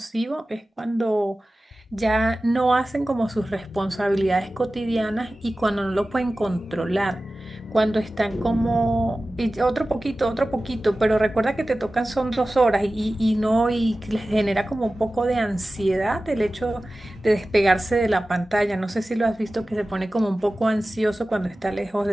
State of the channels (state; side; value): normal; both; correlation 0.96